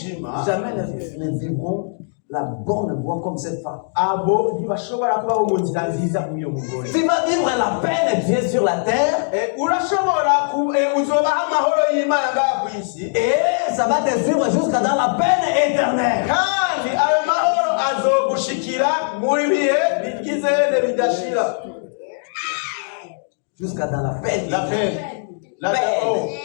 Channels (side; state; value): right; silent; digital silence